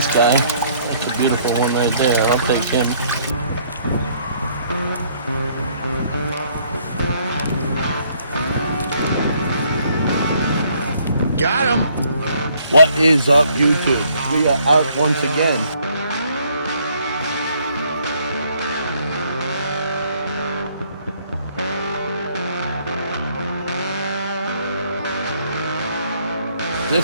guy. That's a beautiful one right there. I'll take him. Got him. What is up, YouTube? We are out once again.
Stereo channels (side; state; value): both; inverted; correlation -0.65